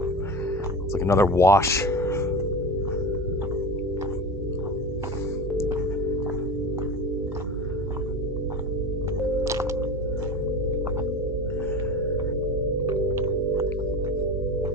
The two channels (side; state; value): both; normal; correlation 0.28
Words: It's like another wash.